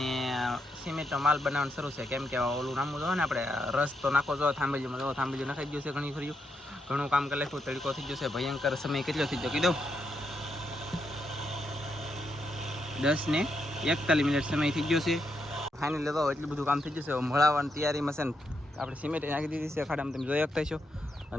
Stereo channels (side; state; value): both; normal; correlation 0.81